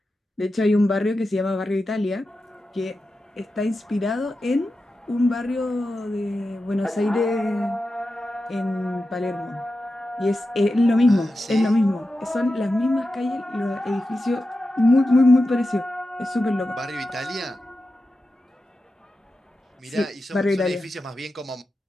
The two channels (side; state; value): both; normal; correlation 0.91